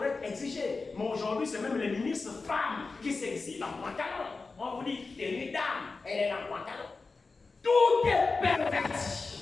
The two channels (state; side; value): quieter; right; 4.1 dB